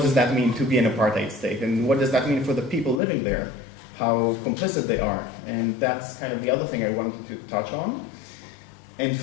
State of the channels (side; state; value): right; drops out; at 3.0 s